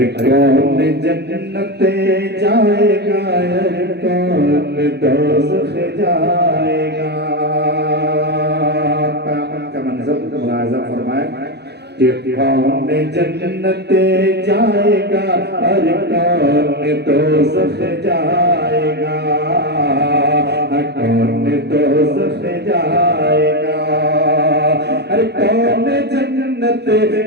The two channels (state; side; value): late; left; 0.48 ms